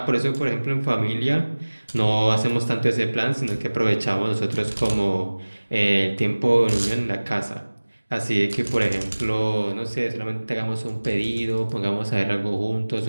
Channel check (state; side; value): inverted; both; correlation -1.00